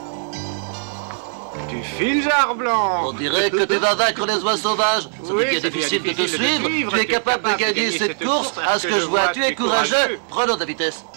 Tu files, Jarblanc. On dirait que tu vas vaincre les oies sauvages. Ça devient difficile de te suivre. Tu es capable de gagner cette course. À ce que je vois, tu es courageux. Prenons de la vitesse.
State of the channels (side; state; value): left; silent; digital silence